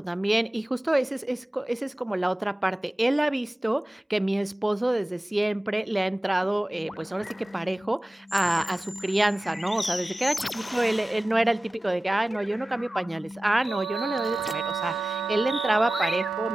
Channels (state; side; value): normal; both; correlation 0.96